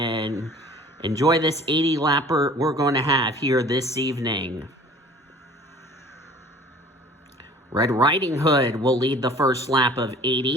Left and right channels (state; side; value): normal; both; correlation 0.48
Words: enjoy this 80-lapper we're going to have here this evening. Red Riding Hood will lead the first lap of